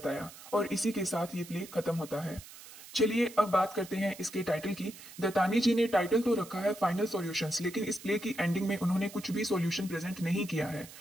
और इसी के साथ ये प्ले खत्म होता है। चलिए अब बात करते हैं इसके टाइटल की। दत्तानी जी ने टाइटल तो रखा है फाइनल सॉल्यूशंस, लेकिन इस प्ले की एंडिंग में उन्होंने कुछ भी सॉल्यूशन प्रेजेंट नहीं किया है।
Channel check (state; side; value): noise; right; hiss, 17 dB below the sound